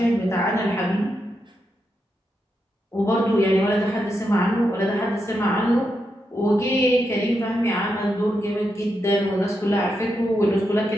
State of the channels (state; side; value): normal; both; correlation 0.84